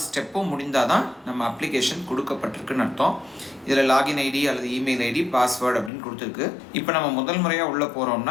ஸ்டெப்பும் முடிந்தால் தான் நம்ம அப்ளிகேஷன் கொடுக்கப்பட்டிருக்குன்னு அர்த்தம். இதில் லாகின் ஐடி அல்லது இமெயில் ஐடி, பாஸ்வேர்டு அப்படின்னு கொடுத்துருக்கு. இப்போ நம்ம முதல் முறையாக உள்ளே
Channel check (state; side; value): drops out; right; at 5.9 s